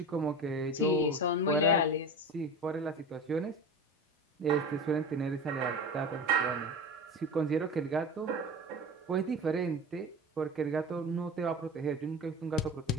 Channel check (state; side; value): normal; both; correlation 0.31